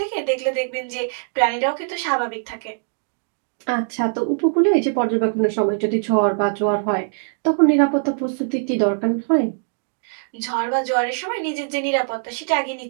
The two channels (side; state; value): left; silent; digital silence